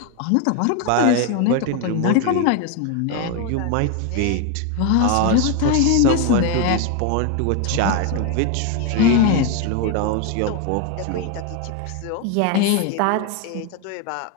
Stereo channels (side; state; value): both; different; correlation 0.01